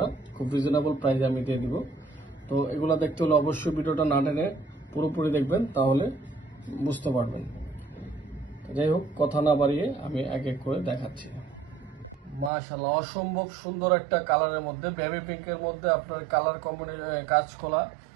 খুব রিজনেবল প্রাইসে আমি দিয়ে দিব। তো এগুলো দেখতে হলে অবশ্যই ভিডিওটা না টেনে পুরোপুরি দেখবেন, তাহলে বুঝতে পারবেন। যাই হোক, কথা না বাড়িয়ে আমি এক এক করে দেখাচ্ছি। মাশাআল্লাহ, অসম্ভব সুন্দর একটা কালারের মধ্যে, বেবি পিঙ্কের মধ্যে আপনার কালার কাজ করা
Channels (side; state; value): left; drops out; at 12.5 s